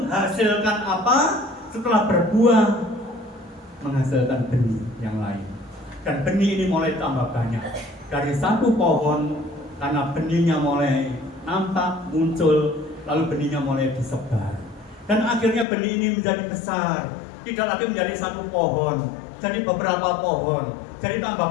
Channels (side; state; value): right; drops out; at 15.7 s